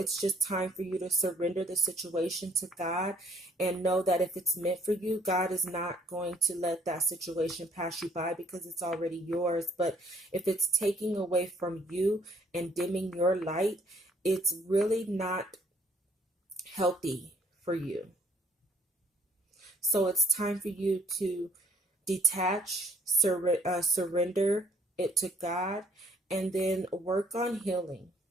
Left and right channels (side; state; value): both; normal; correlation 0.62